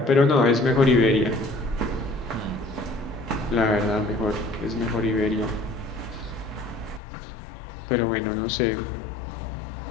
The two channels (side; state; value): right; drops out; at 7.0 s